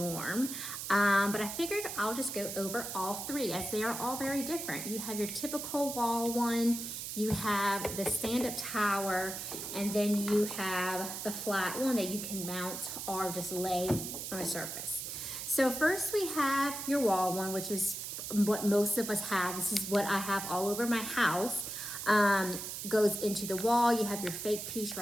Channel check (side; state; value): right; noise; hiss, 6 dB below the sound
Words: but I figured I'll just go over all three as they are all very different. You have your typical wall one, you have the stand-up tower, and then you have the flat one that you can mount or just lay on a surface. So first we have your wall one, which is what most of us have. This is what I have all over my house. Goes into the wall. You have your fake piece